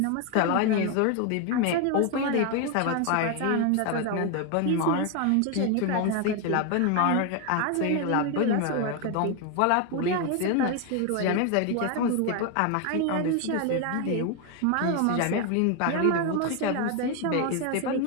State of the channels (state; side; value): different; both; correlation 0.01